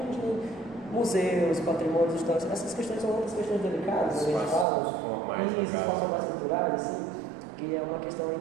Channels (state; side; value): drops out; left; at 4.7 s